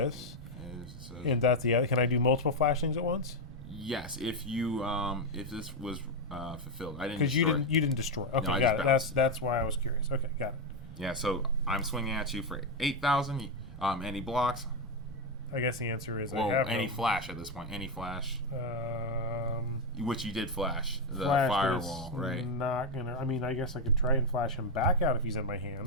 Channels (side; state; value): both; normal; correlation 0.06